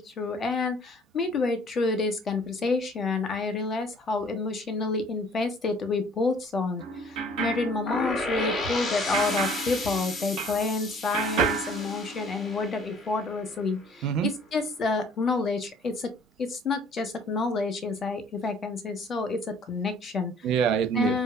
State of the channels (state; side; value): normal; both; correlation 0.55